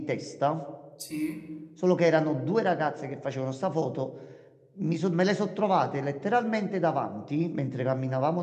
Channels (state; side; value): identical; both; correlation 1.00